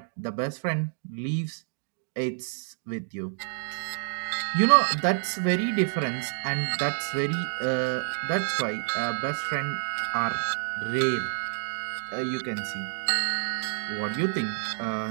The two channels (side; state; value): left; silent; digital silence